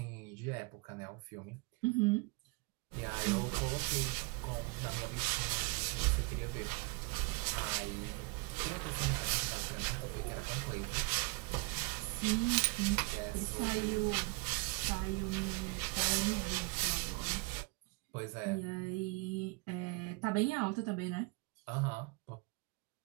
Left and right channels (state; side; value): quieter; left; 27.2 dB